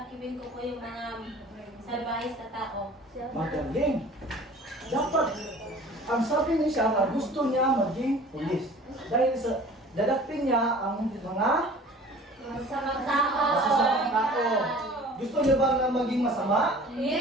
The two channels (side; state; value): both; normal; correlation 0.46